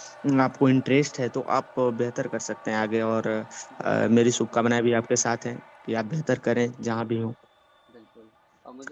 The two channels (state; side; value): identical; both; correlation 1.00